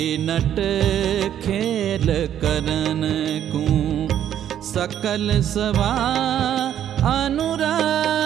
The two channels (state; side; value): quieter; left; 10.4 dB